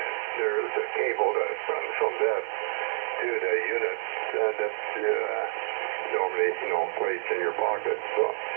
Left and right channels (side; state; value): left; silent; digital silence